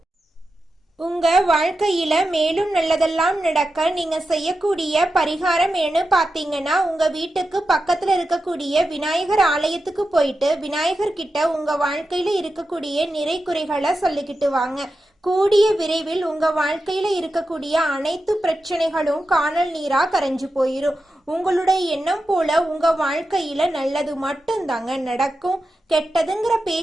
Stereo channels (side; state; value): both; normal; correlation 0.90